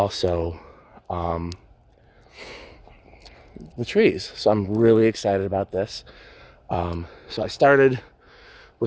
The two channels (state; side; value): identical; both; correlation 1.00